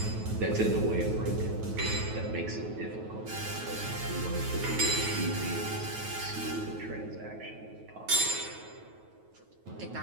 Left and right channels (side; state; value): left; late; 9.3 ms